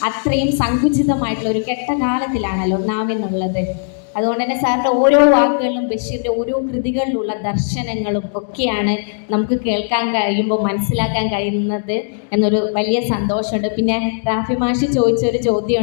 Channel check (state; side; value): silent; right; digital silence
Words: അത്രയും സങ്കുചിതമായിട്ടുള്ള ഒരു കെട്ട കാലത്തിലാണല്ലോ നാം എന്നുള്ളത്. അതുകൊണ്ട് തന്നെ സാറിൻ്റെ ഓരോ വാക്കുകളിലും ബഷീറിൻ്റെ ഓരോ കൃതികളിലുള്ള ദർശനങ്ങളും ഒക്കെയാണ് നമുക്ക് കേൾക്കാൻ കഴിയുമ്പോൾ മനസ്സിലാക്കാൻ കഴിയുന്നത് എന്നൊരു വലിയ സന്തോഷമുണ്ട്. പിന്നെ റാഫി മാഷി ചോദിച്ചൊരു ചോദ്യം